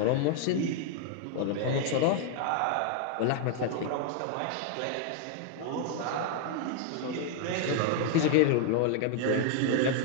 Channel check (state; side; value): different; both; correlation 0.00